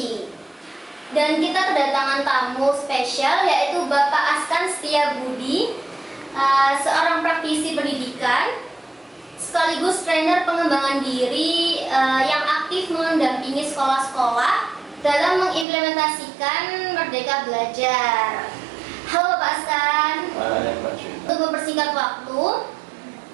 Dan kita kedatangan tamu spesial yaitu Bapak Askan Setiabudi, seorang praktisi pendidikan sekaligus trainer pengembangan diri yang aktif mendampingi sekolah-sekolah dalam mengimplementasikan Merdeka Belajar. Halo Pak Askan. Untuk mempersingkat waktu,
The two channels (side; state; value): left; drops out; at 15.7 s